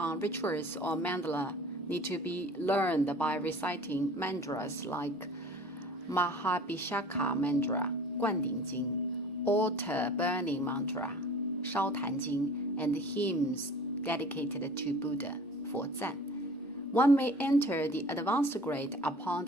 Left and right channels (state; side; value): normal; both; correlation 0.44